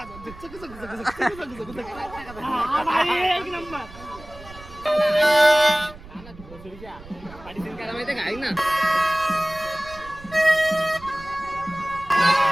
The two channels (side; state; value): right; noise; rumble, 18 dB below the sound